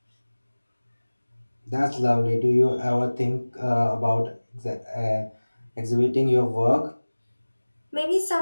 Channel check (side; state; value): both; inverted; correlation -1.00